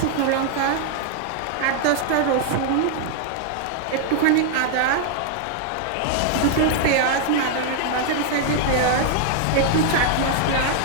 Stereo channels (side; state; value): both; different; correlation 0.00